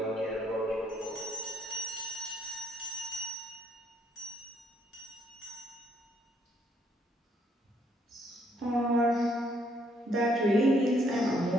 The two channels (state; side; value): normal; both; correlation 0.69